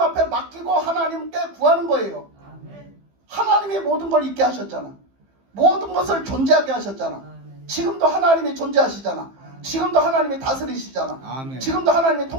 앞에 맡기고 하나님께 구하는 거예요. 하나님이 모든 걸 있게 하셨잖아. 모든 것을 존재하게 하셨잖아. 지금도 하나님이 존재하시잖아. 지금도 하나님이 다스리시잖아. 아멘. 지금도 하나님이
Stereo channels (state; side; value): late; left; 15 ms